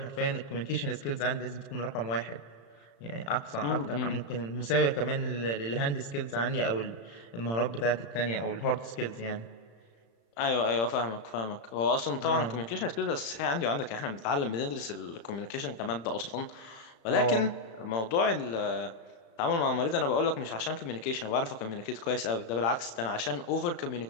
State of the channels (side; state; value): right; late; 35 ms